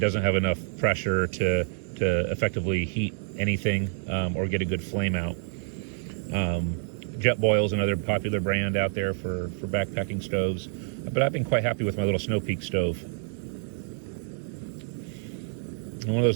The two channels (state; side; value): silent; left; digital silence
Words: have enough pressure to effectively heat anything or get a good flame out. Jetboil is another popular brand out there for backpacking stoves, but I've been quite happy with my little Snow Peak stove. And one of